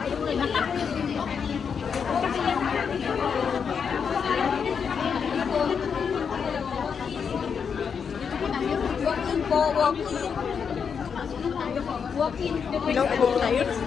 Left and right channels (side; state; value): right; quieter; 6.6 dB